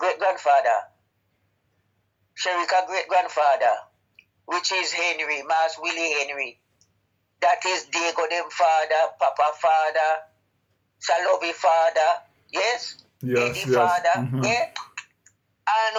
grandfather, Sharika great grandfather, which is Henry, Mas Willie Henry, that is Diego them father, Papa father, Salovi father, yes? Eddie father, Mm-hmm. yeah? And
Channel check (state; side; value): identical; both; correlation 1.00